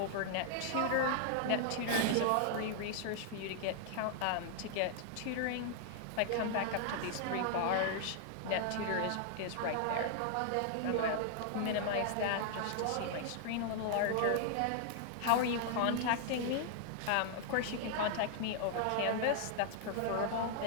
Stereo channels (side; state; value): both; different; correlation 0.00